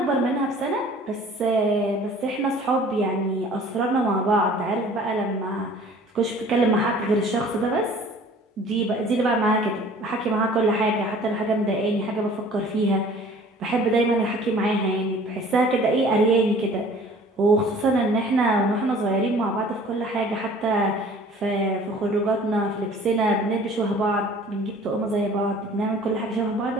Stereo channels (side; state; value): both; normal; correlation 0.50